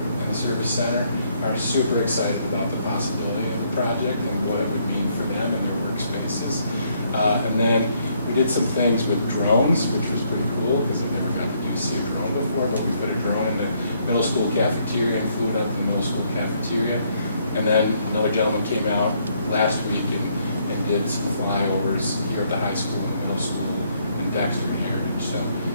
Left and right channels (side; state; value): both; inverted; correlation -0.70